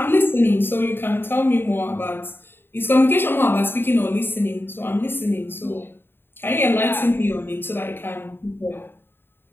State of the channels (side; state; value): right; late; 0.10 ms